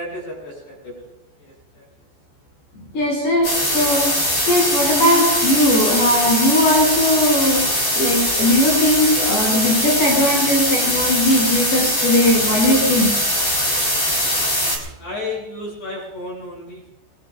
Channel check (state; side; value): late; right; 14 ms